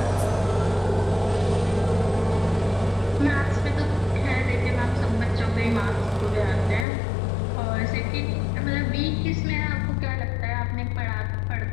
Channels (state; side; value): drops out; right; at 6.9 s